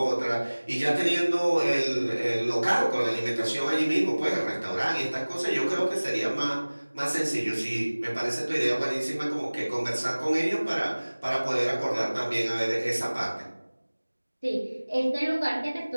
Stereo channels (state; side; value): inverted; both; correlation -1.00